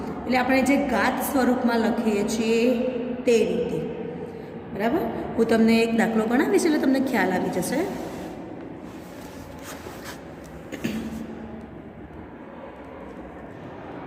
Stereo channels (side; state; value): both; identical; correlation 1.00